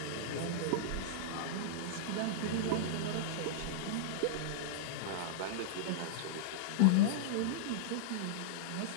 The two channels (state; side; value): different; both; correlation -0.02